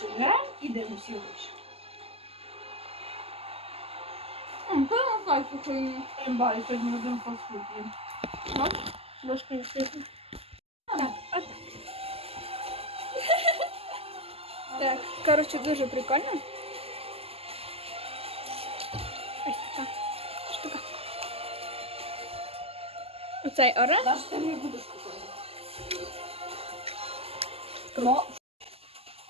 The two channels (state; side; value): late; left; 0.29 ms